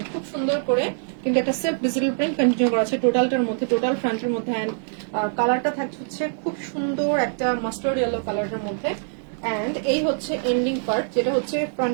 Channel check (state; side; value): silent; left; digital silence